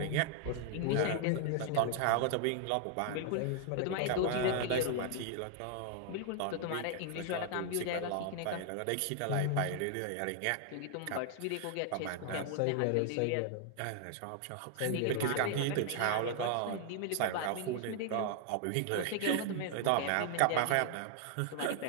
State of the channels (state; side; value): different; both; correlation 0.00